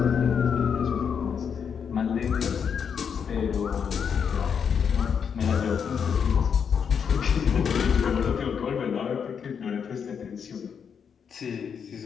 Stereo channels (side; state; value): right; quieter; 7.0 dB